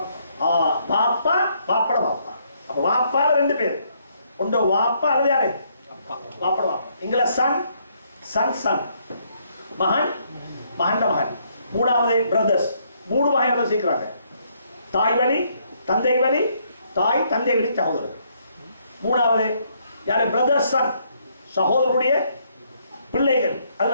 வாப்பா வாப்பட வாப்பா. அப்ப வாப்பால 2 பேர். ஒன்று வாப்பா அல்லது யாரு? வாப்பட வாப்பா. இங்கில சன் சன் சன், மகன் மகன் மகன். மூணாவது பிரதர்ஸ். 3 வகையாக சேர்க்கிறாங்க. தாய் வழி தந்தை வழி, தாய் தந்தை வழி சகோதரர். மூணாவது யாரு? பிரதர்ஸ் சன், சகோதரருடைய பிள்ளைகள்.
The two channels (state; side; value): inverted; both; correlation -0.71